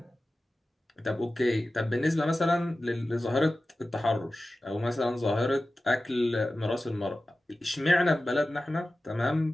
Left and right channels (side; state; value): both; normal; correlation 0.95